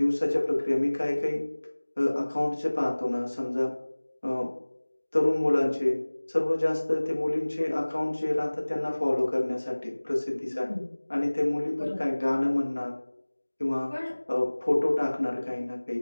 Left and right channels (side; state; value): both; inverted; correlation -1.00